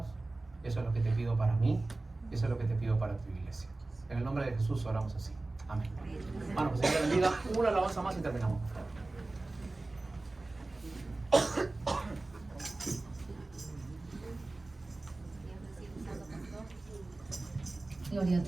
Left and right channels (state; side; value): quieter; left; 3.1 dB